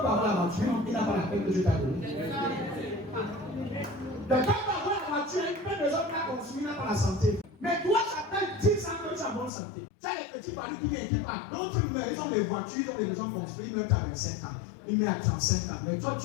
la voiture, il n'a pas la peine que Dieu t'a donnée. Quelqu'un peut avoir la voiture, il peut les autres la consommer, il n'a pas la santé. Mais toi, ça fait 10 ans que tu as bonne santé. Tu as les petits paris qui viennent, qui partent. D'autres, ils ont des voitures, ils ont des maisons construites, ils mettent à 25 ans, ils mettent à 35 ans. Mais toi,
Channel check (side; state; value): right; drops out; at 9.5 s